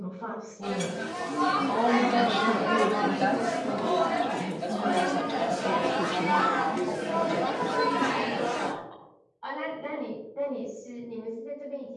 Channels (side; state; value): both; identical; correlation 1.00